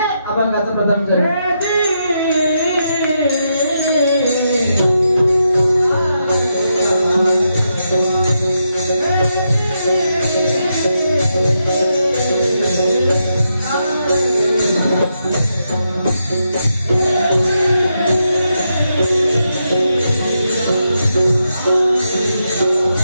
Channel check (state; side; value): inverted; both; correlation -0.83